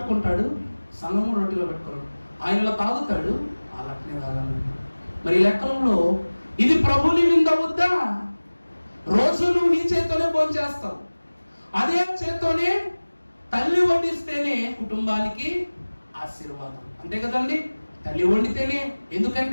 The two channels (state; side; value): inverted; both; correlation -1.00